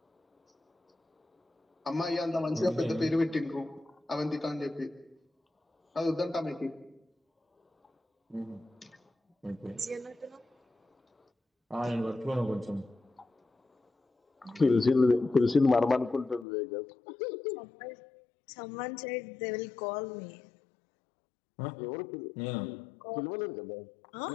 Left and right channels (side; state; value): right; drops out; at 16.4 s